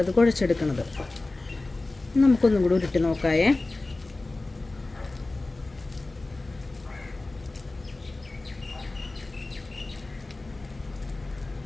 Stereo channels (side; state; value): right; quieter; 3.1 dB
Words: കുഴച്ചെടുക്കുന്നത്. നമുക്കൊന്നും കൂടി ഉരുട്ടി നോക്കായേ.